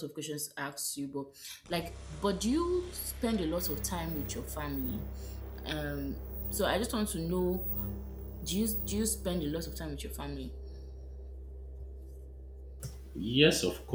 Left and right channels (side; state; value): both; identical; correlation 1.00